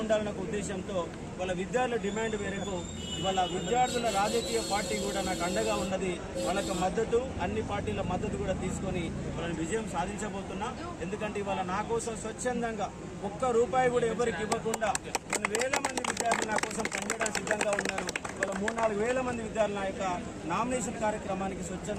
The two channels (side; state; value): both; identical; correlation 1.00